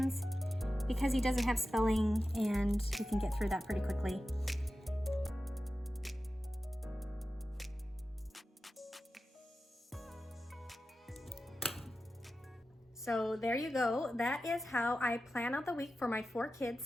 because he doesn't have spelling, and he can get through that pretty quickly. So there you go. That is how I plan out the week for my 4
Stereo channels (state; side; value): normal; both; correlation 0.93